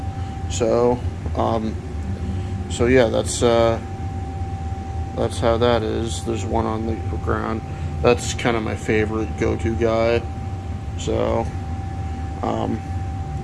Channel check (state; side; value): identical; both; correlation 1.00